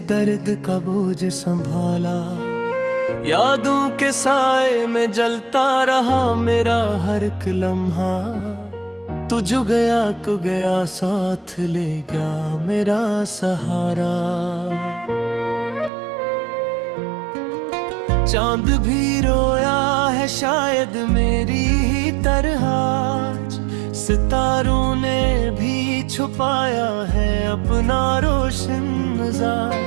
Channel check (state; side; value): drops out; left; at 15.9 s